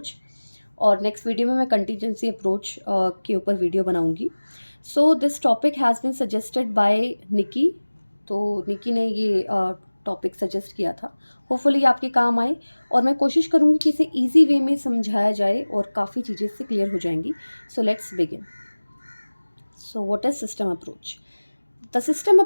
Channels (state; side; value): inverted; both; correlation -1.00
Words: और next video में मैं contingency approach के ऊपर video बनाऊंगी. So this topic has been suggested by Nikki. तो निकी ने ये topic suggest किया था. होपफुली आपके काम आए और मैं कोशिश करूंगी कि इसे ईजी वे में समझाया जाए और काफ़ी चीज़ें इससे क्लियर हो जाएंगी. So let's begin. So what is system approach? The system